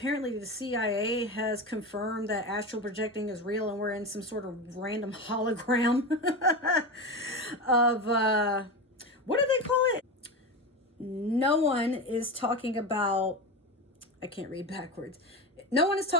the CIA has confirmed that astral projecting is real, and we're in some sort of random hologram of, what do they call it? No one is talking about, I can't read backwards. No one is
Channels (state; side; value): normal; both; correlation 0.21